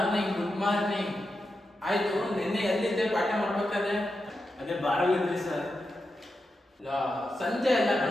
morning. ಆಯ್ತು, ನಿನ್ನೆ ಎಲ್ಲಿದ್ದೆ ಪಾಠ ಮಾಡ್ಬೇಕಾದ್ರೆ? ಅದೇ ಬಾರಲ್ಲಿದ್ರಿ ಸರ್. ಸಂಜೆ ಎಲ್ಲ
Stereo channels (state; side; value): normal; both; correlation 0.88